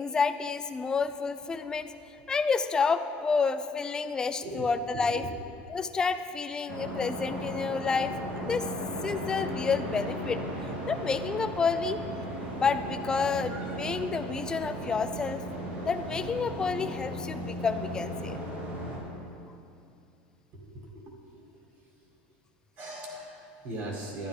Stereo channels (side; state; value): right; quieter; 3.7 dB